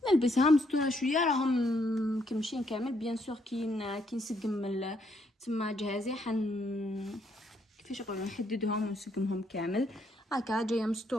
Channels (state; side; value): normal; both; correlation 0.73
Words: نلبسها مستوره شويه. راهم كمشين كامل بيان سور كي نسقم تما جهازي كيفاش نقولوا نحددهم ونسقمهم كامل هكا جايه